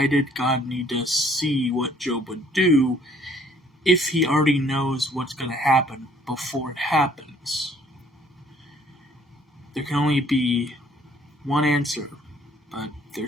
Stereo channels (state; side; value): normal; both; correlation 0.60